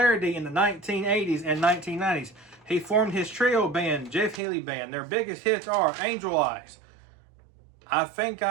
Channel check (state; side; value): drops out; left; at 4.4 s